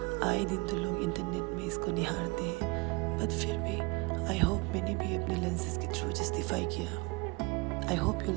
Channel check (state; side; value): quieter; left; 26.8 dB